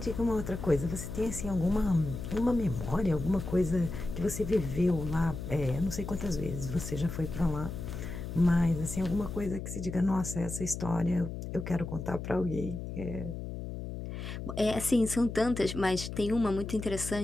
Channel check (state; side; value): noise; left; hum, 7 dB below the sound